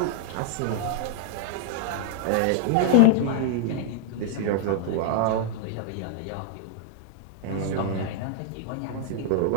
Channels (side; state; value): both; different; correlation -0.01